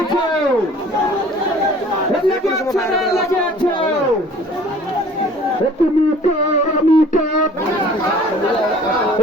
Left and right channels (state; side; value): normal; both; correlation 0.50